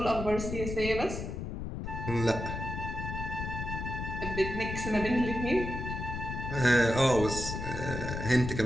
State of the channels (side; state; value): left; noise; rumble, 5 dB below the sound